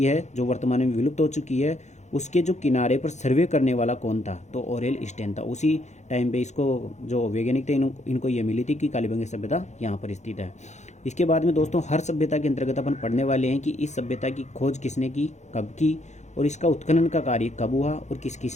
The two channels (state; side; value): late; right; 0.33 ms